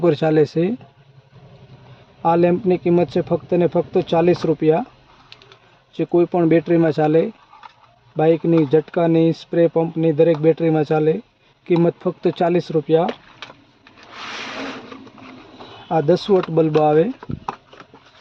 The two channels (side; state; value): both; identical; correlation 1.00